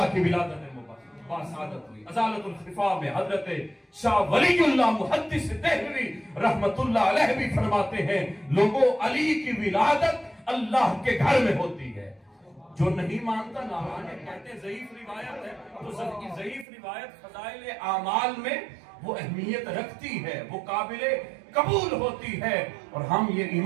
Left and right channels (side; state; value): left; drops out; at 16.7 s